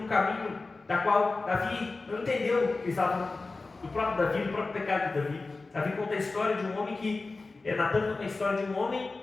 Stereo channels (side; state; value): right; quieter; 3.6 dB